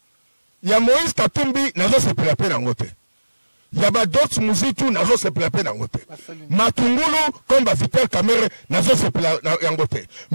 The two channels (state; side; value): inverted; both; correlation -1.00